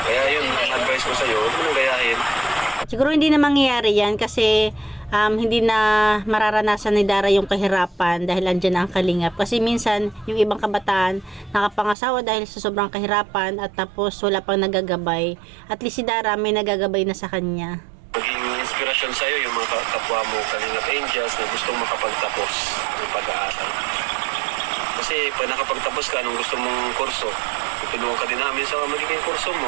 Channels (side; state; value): left; drops out; at 12.0 s